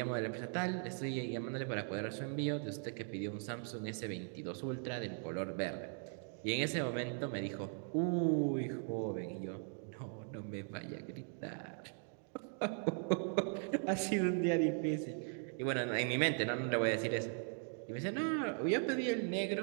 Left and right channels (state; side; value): silent; left; 52 dB below the other